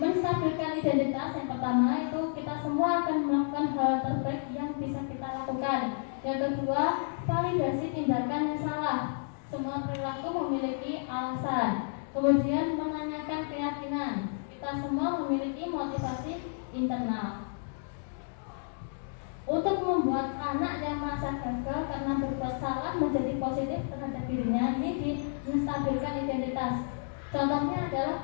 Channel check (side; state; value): right; silent; digital silence